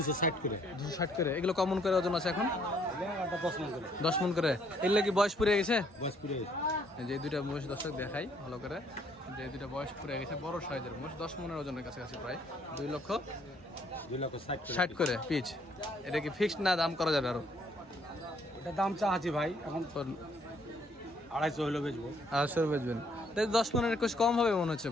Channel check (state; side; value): normal; both; correlation 0.66